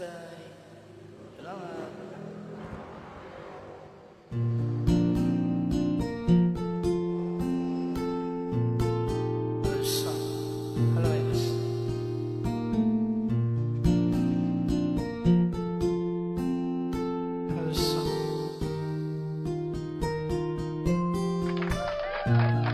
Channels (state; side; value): identical; both; correlation 1.00